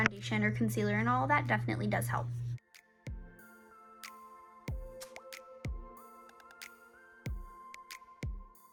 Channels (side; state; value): both; identical; correlation 1.00